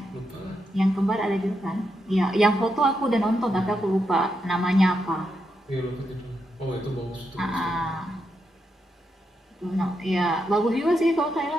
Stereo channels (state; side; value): normal; both; correlation 0.83